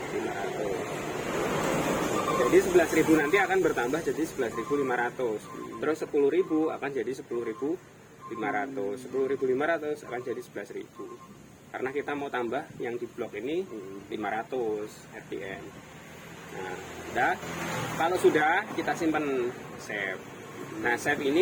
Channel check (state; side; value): identical; both; correlation 1.00